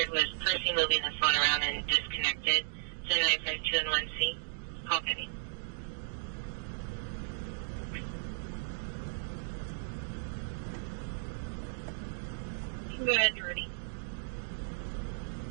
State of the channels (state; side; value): silent; left; digital silence